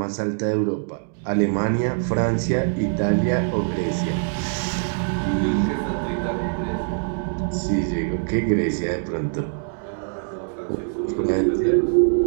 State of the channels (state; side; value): silent; left; 63 dB below the other